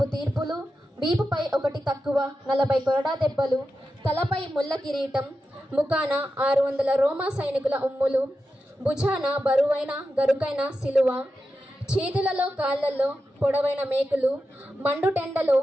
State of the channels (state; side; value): normal; both; correlation 0.90